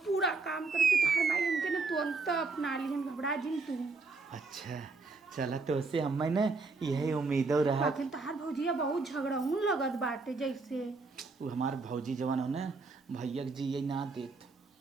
पूरा काम करब कि तोहर माई हमके ना तुरंत अपना ली हम घबरा जिन तू। अच्छा चला तो उससे हमें ना यही उम्मीदों रहा लेकिन तहार भौजिया बहुत झगड़ाऊन लगत बाटे जैसे वो हमार भौजी जवान हो ना भैया जी ये ना देत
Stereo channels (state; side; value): quieter; left; 4.0 dB